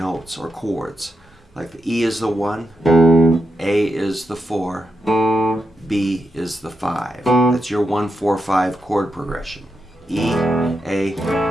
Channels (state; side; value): normal; both; correlation 0.86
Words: or chords. Like the E is the 1, A is the 4, B is the 5. That's your 1-4-5 chord progression. E, A,